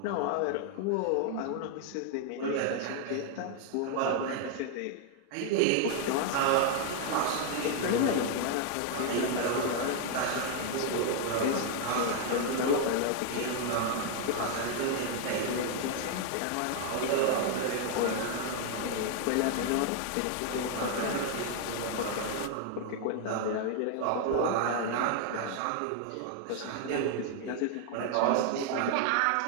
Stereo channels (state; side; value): different; both; correlation 0.00